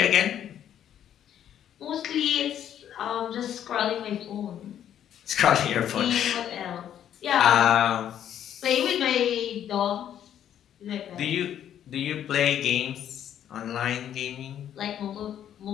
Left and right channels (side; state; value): right; quieter; 10.2 dB